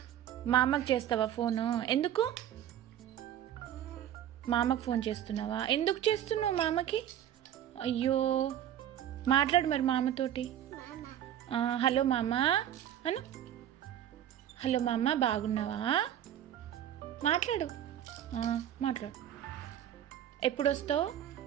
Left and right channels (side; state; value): left; quieter; 10.8 dB